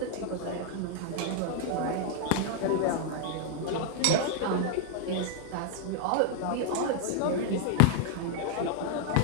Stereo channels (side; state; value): both; different; correlation 0.00